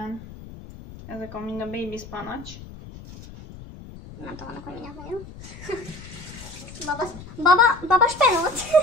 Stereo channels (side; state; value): left; noise; rumble, 15 dB below the sound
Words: Ezek a mind a baby spinach. Nem tudom, hogy mindjárt vagyok. Baba spenót.